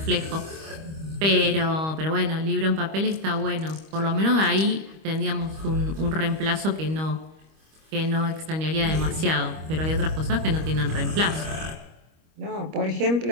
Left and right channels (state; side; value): late; left; 25 ms